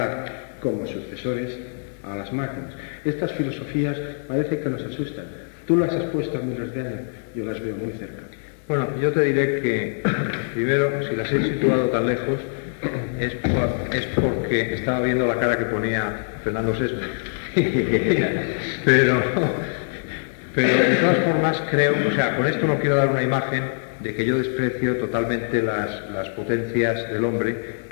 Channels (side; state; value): right; silent; digital silence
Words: como sucesores a las máquinas. Estas filosofías parece que nos asustan. Tú las has puesto a miles de años, yo las veo muy cerca. Bueno, yo te diré que, primero, si las he situado tan lejos, es porque estaba viendo la cara que ponía Fernando Sesme. pero de todas formas creo, o sea, con esto no quiero dar una imagen de que yo desprecio totalmente las potencias del hombre.